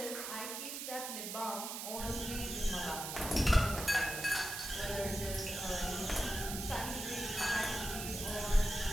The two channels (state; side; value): noise; right; hiss, 5 dB below the sound